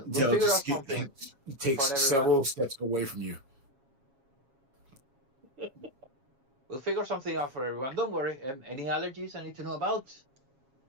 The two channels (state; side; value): late; left; 7.4 ms